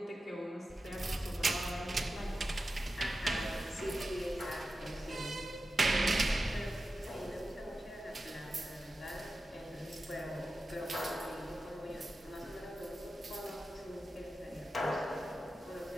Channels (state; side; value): normal; both; correlation 0.92